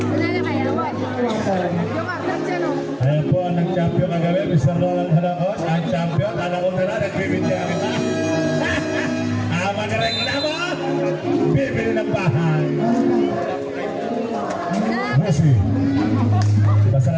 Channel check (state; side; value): identical; both; correlation 1.00